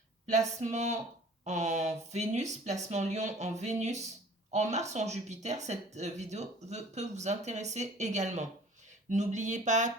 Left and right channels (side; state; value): both; normal; correlation 0.49